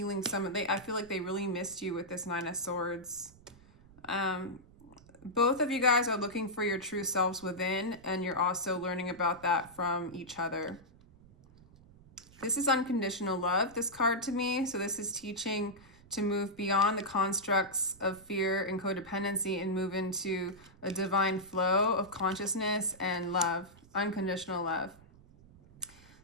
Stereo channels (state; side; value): noise; right; rumble, 24 dB below the sound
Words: I feel like they really missed you with this Nine of Swords. Both of you guys are looking for your true selves within, and you're also learning about that from each other. This is unconditional love, this card to me. So this is teaching to move beyond the constructs of fear and codependency and move into a divine flow of consciousness and love, unconditional love.